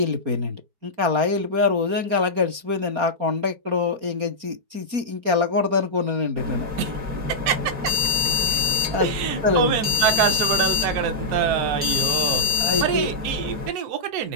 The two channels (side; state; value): left; late; 4.6 ms